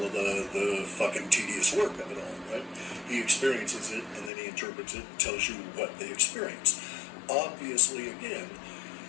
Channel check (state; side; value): drops out; right; at 4.3 s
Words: of the fucking tedious work of it all, right? He experiences it, and then he interprets it, tells you what they experience. Obviously, again,